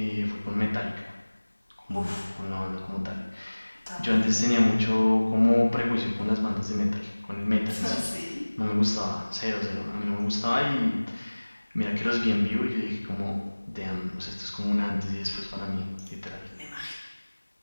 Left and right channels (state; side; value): inverted; both; correlation -1.00